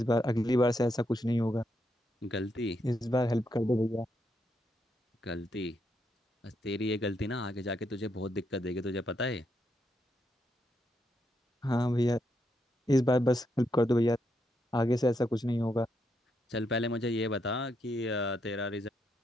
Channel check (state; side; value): normal; both; correlation 0.79